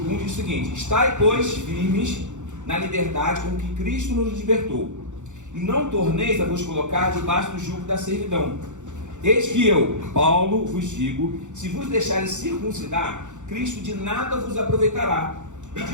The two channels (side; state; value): left; late; 0.85 ms